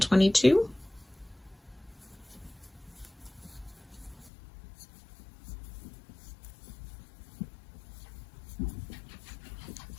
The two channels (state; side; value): drops out; right; at 4.3 s